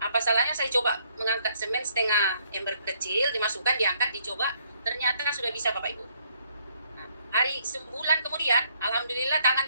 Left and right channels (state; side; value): inverted; both; correlation -0.68